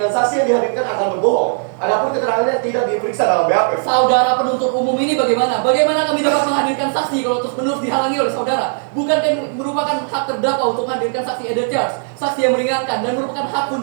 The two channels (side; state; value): left; silent; 62 dB below the other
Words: saksi yang dihadirkan akan berbohong. Adapun keterangannya tidak diperiksa dalam BAP. Saudara penuntut umum ini bagaimana? Bagaimana kami dapat menghadirkan saksi kalau terus-menerus dihalangi oleh saudara? Bukankah merupakan hak terdakwa untuk menghadirkan saksi Eda Charles, saksi yang meringankan dan merupakan hak